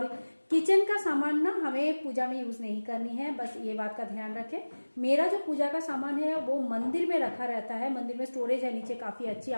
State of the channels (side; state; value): both; inverted; correlation -1.00